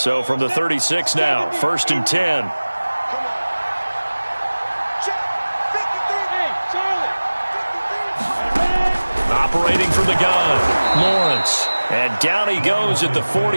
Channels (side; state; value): both; inverted; correlation -1.00